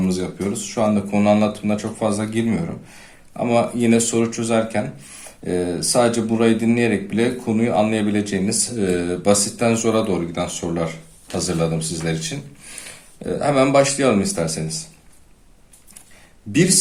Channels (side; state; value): both; identical; correlation 1.00